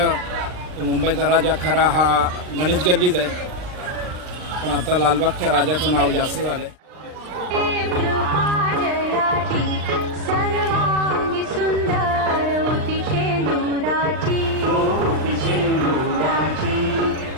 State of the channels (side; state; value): left; late; 39 ms